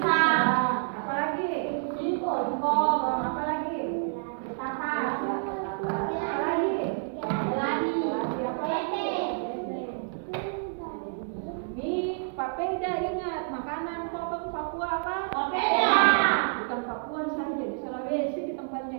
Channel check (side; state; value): left; silent; 57 dB below the other